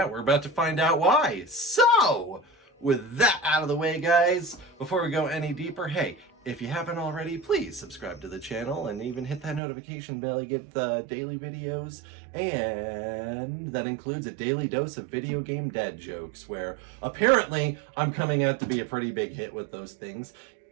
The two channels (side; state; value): left; drops out; at 9.6 s